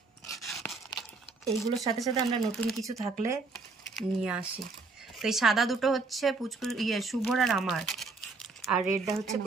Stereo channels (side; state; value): left; quieter; 4.0 dB